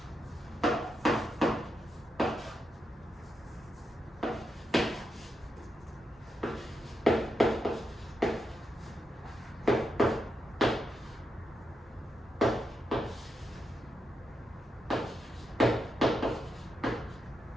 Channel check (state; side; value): normal; both; correlation 0.84